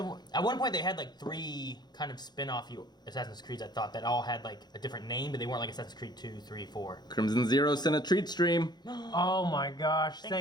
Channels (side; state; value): right; late; 0.21 ms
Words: one? At one point, they had like 3 kind of spin-off Assassin's Creeds. I thought that all had like a different name, but they weren't like Assassin's Creed 2, 3, 4. Crimson Zero sent a treat stream. Oh my gosh!